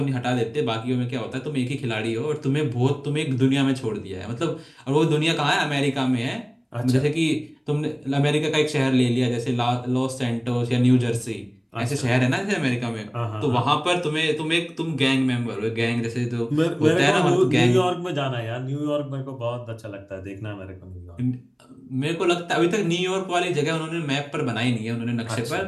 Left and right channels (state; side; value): identical; both; correlation 1.00